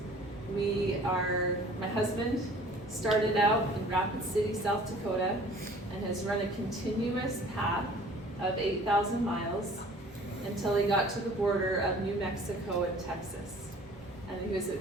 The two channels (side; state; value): both; normal; correlation 0.50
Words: My husband started out in Rapid City, South Dakota, and has run a continuous path of 8,000 miles until he got to the border of New Mexico and Texas. And he was